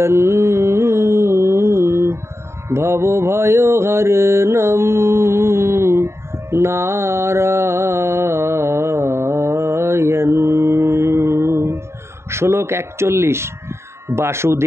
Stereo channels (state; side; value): late; left; 0.13 ms